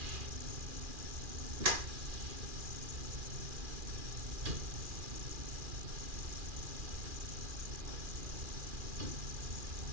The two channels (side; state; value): left; late; 2.4 ms